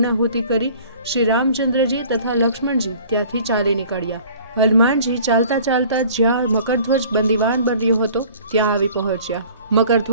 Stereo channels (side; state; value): both; inverted; correlation -0.50